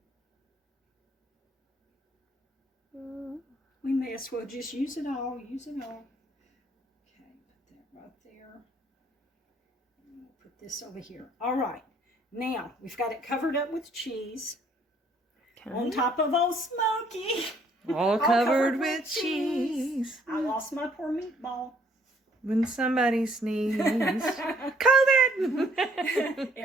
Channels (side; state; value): both; normal; correlation 0.63